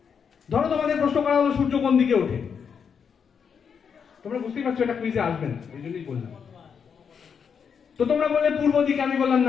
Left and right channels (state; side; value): quieter; right; 6.8 dB